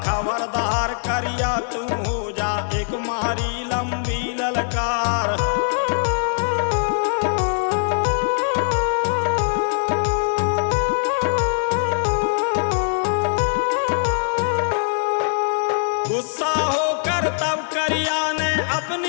खबरदार करिया तू हो जा एक मारी लंबी ललकार। गुस्सा होकर तब करिया ने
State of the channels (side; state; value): right; silent; digital silence